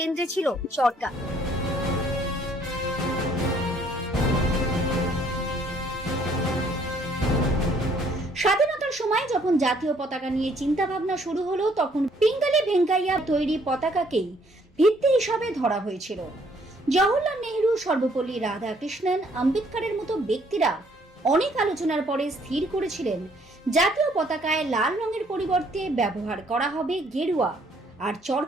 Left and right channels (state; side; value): normal; both; correlation 0.64